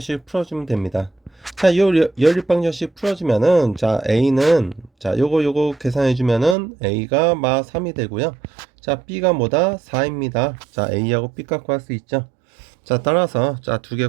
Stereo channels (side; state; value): left; drops out; at 6.6 s